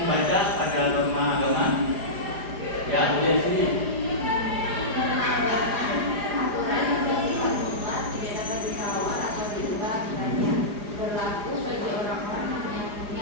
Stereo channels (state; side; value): late; left; 4.9 ms